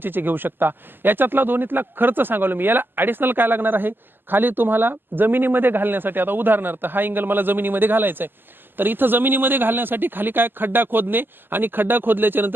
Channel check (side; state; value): left; late; 0.095 ms